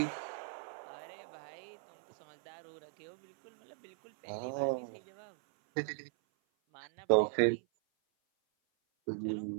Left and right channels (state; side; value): silent; left; 52 dB below the other